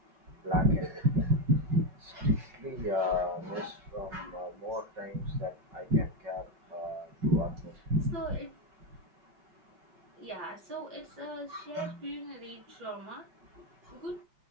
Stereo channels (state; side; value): late; left; 5.4 ms